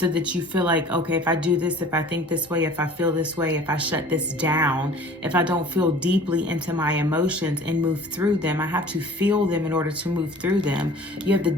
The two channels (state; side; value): normal; both; correlation 0.47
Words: that you feel like, okay, if I do this, if I think this way, if I feel this way, if I shut this down, if I don't feel deeply into my emotions and move through them, I have to feel them in order to move through them. You have the